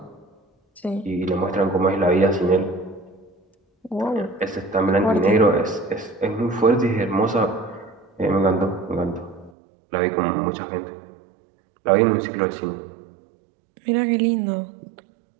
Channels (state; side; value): drops out; left; at 9.5 s